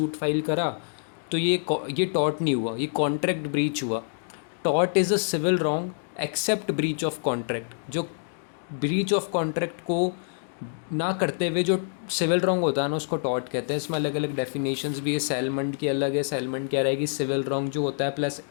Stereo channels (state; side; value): silent; right; digital silence